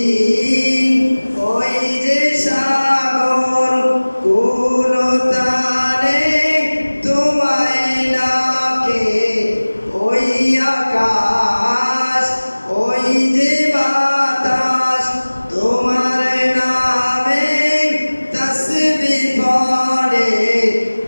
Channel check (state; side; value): inverted; both; correlation -1.00